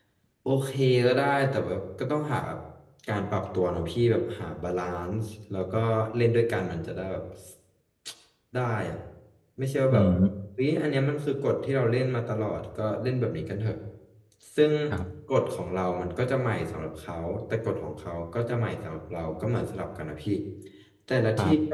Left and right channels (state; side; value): identical; both; correlation 1.00